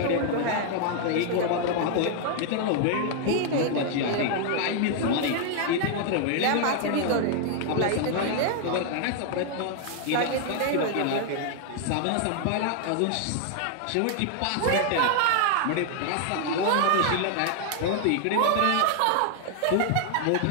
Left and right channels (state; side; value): different; both; correlation 0.00